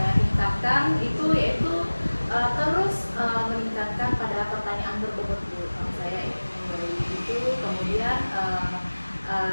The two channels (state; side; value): inverted; both; correlation -1.00